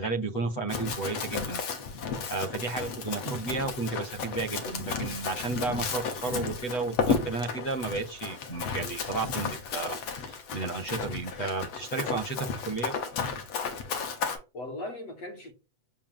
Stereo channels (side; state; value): right; late; 8.1 ms